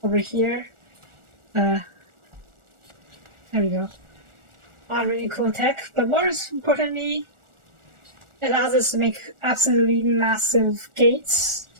over here. There we go. A lot of really cool tech, but more importantly, it allows us to make absolutely massive gates,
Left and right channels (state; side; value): late; left; 1.4 ms